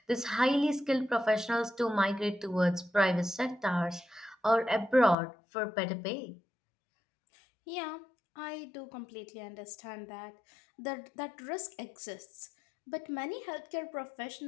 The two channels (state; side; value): drops out; right; at 5.2 s